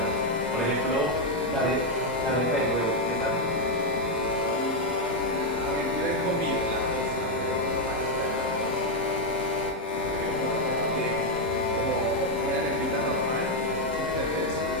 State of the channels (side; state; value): both; normal; correlation 0.02